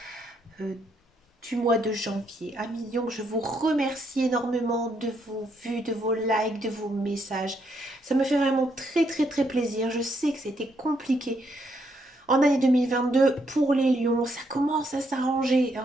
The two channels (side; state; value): both; normal; correlation 0.75